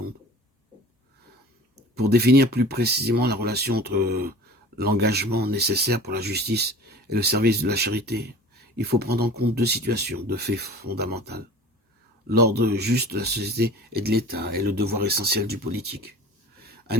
Pour définir plus précisément la relation entre l'engagement nécessaire pour la justice et le service de la charité, il faut prendre en compte deux situations, deux faits fondamentaux. L'ordre juste de la société et de l'État est le devoir essentiel du politique. Un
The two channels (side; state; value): both; normal; correlation 0.41